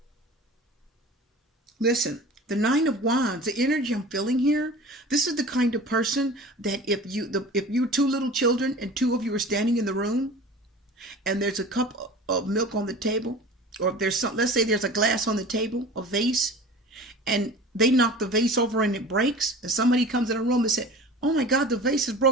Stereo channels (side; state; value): both; normal; correlation 0.39